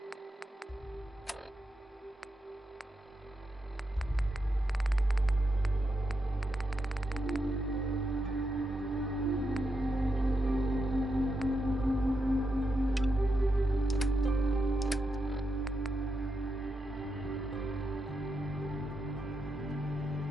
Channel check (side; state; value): both; normal; correlation 0.85